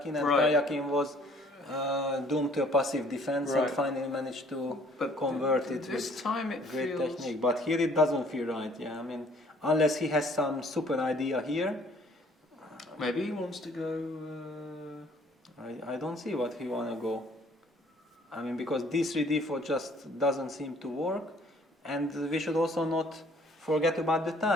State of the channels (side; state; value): both; normal; correlation 0.58